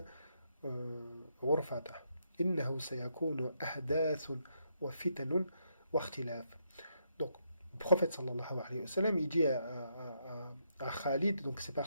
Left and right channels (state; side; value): inverted; both; correlation -0.77